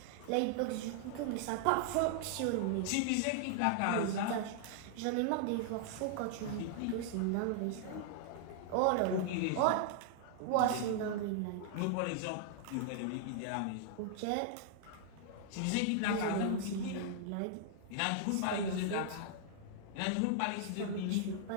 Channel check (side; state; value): both; different; correlation -0.01